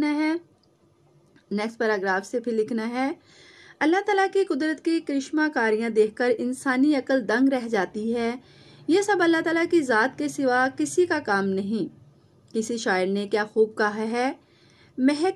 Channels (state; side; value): identical; both; correlation 1.00